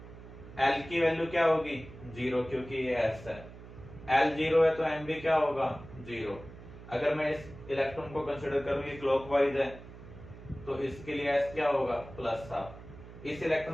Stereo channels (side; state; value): right; noise; hum, 16 dB below the sound